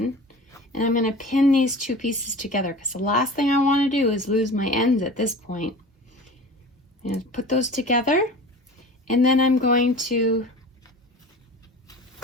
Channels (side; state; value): both; normal; correlation 0.38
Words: and I'm going to pin these two pieces together, because the last thing I want to do is lose my ends at this point. And put those together, and then I'm going to